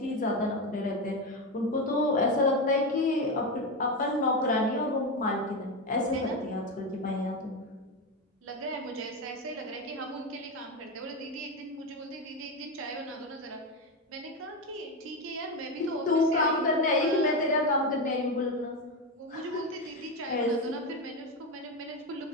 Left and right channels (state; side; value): normal; both; correlation 0.14